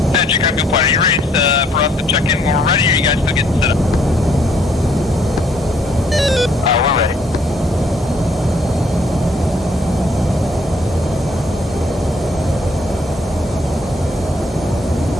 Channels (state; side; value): normal; both; correlation 0.66